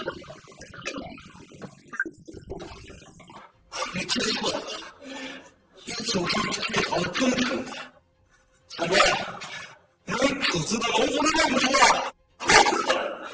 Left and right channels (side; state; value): both; identical; correlation 1.00